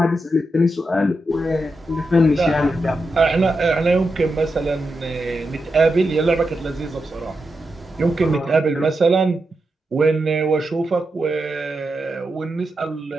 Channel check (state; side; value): normal; both; correlation 0.87